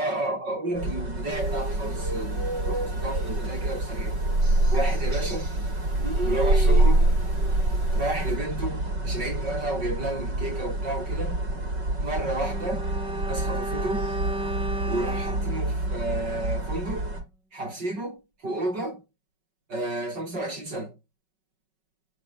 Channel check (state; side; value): late; left; 5.3 ms